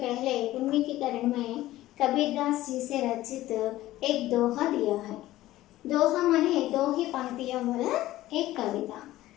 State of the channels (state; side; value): quieter; right; 15.7 dB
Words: उन्मीकीकरण में कबीरदास जी से रचित एक दोहा दिया है। दोहा माने दो ही पंक्तियों वाला एक कविता।